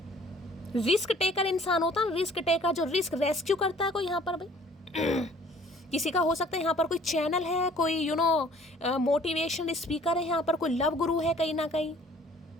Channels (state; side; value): normal; both; correlation 0.55